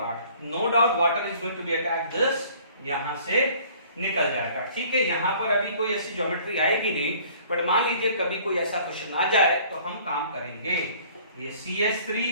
No doubt water is going to be attack this, यहां से निकल जाएगा। ठीक है, यहां पर अभी कोई ऐसी ज्योमेट्री आएगी नहीं, बट मान लीजिए कभी कोई ऐसा क्वेश्चन आ जाए तो हम काम करेंगे। ये CH3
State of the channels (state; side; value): inverted; both; correlation -0.54